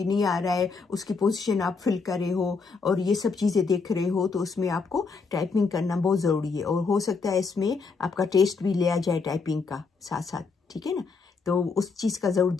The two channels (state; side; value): quieter; right; 4.7 dB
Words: नहीं आ रहा है, उसकी पोजीशन आप फिल कर रहे हो और ये सब चीज़ें देख रहे हो, तो उसमें आपको टाइपिंग करना बहुत ज़रूरी है। और हो सकता है इसमें आपका टेस्ट भी लिया जाए टाइपिंग का साथ साथ, ठीक है ना। तो उस चीज़ का ज़रूर